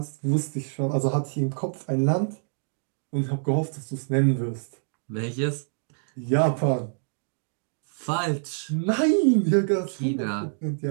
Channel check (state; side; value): silent; left; digital silence